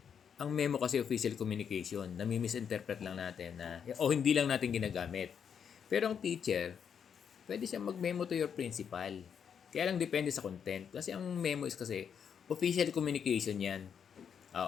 ang memo kasi official communication, nami-misinterpret lang natin o hindi lang natin ginagamit. Pero ang teacher, pwede siya mag-memo to your principal. Kaya lang depende sa content. Kasi ang memo is kasi official communication yan.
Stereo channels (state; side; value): quieter; right; 7.5 dB